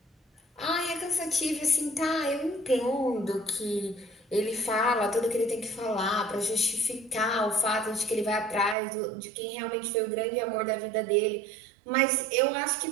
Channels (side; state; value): left; drops out; at 8.8 s